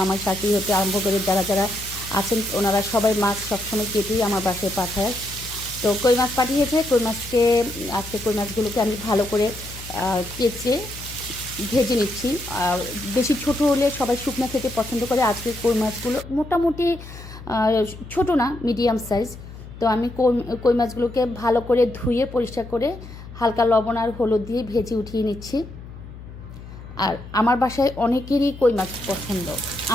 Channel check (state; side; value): noise; left; hum, 15 dB below the sound